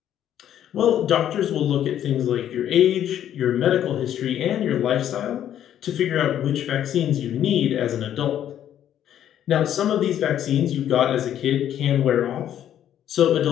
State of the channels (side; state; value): right; quieter; 10.7 dB